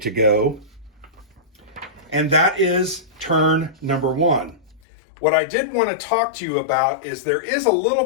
go. And that is turn number 1. What I did want to talk to you about is there is a little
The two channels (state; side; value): drops out; right; at 4.8 s